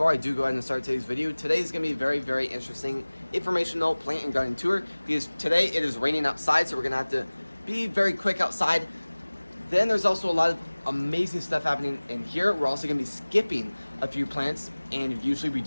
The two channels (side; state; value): both; inverted; correlation -1.00